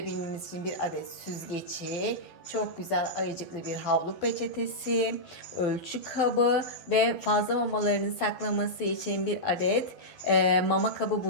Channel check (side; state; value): right; late; 12 ms